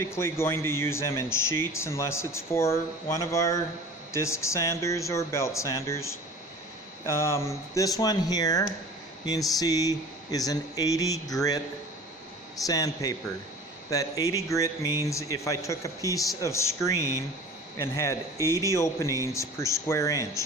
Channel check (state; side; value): normal; both; correlation 0.41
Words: going to use them in sheets unless it's for one of our disc sanders or belt sanders. This one here, you can see, is an 80 grit sandpaper. That 80 grit means if I took a piece of screen and had 80 openings per square